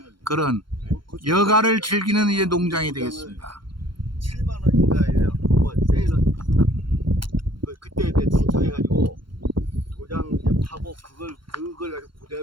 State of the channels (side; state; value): left; late; 0.72 ms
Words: 그런 여가를 즐기는 이제 농장이 되겠습니다. 7만 원인가에 한번 세일은 그때 내 신청해가지고 도장 이제 파고 그걸 가지고